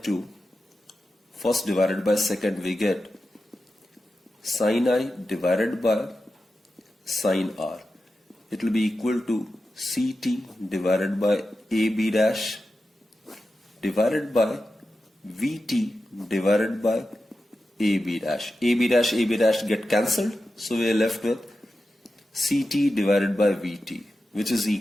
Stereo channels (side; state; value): both; normal; correlation 0.91